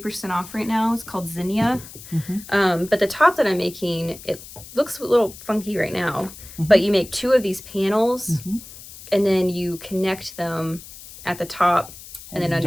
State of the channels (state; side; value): noise; left; hiss, 16 dB below the sound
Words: off right now. It's called Zinnia. But the top that I'm making, it looks a little funky right now. But you make 2 of these panels and then you connect them at the top and then